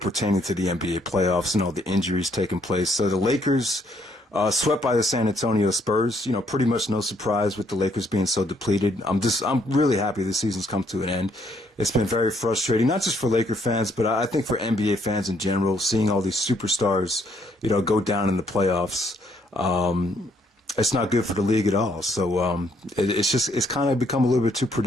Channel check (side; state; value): both; normal; correlation 0.69